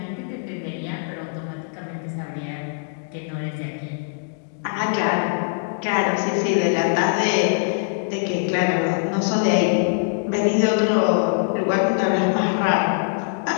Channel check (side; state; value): right; silent; digital silence